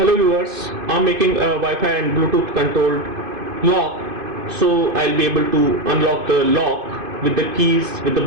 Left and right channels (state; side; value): late; left; 2.5 ms